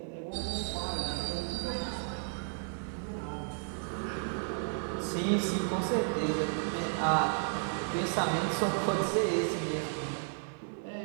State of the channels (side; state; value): left; silent; digital silence